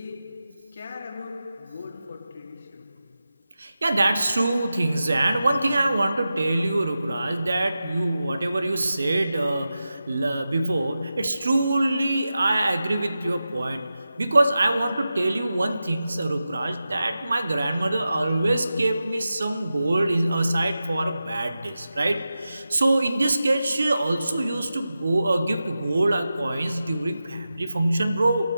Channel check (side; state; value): both; inverted; correlation -0.92